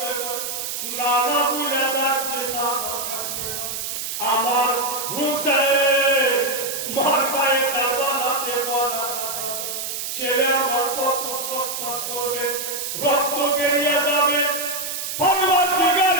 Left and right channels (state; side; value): noise; right; hiss, 4 dB below the sound